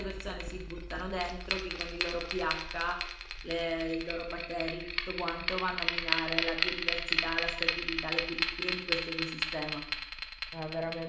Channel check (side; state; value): both; identical; correlation 1.00